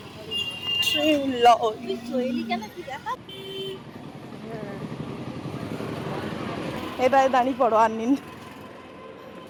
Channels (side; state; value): both; identical; correlation 1.00